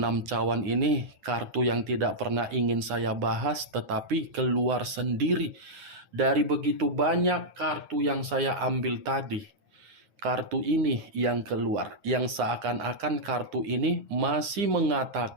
cawan ini kartu yang tidak pernah ingin saya bahas, tetapi keluar sendiri. Dari begitu banyak kartu yang saya ambil tadi, kartu ini yang keluar, yang seakan-akan kartu ini masih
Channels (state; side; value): late; left; 9.8 ms